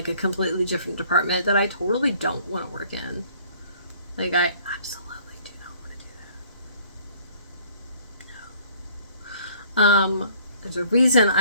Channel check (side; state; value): both; inverted; correlation -0.57